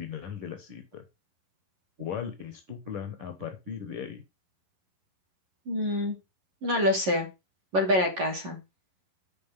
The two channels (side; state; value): left; late; 11 ms